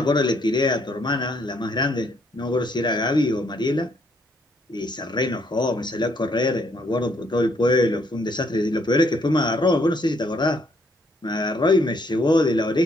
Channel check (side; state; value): both; normal; correlation 0.70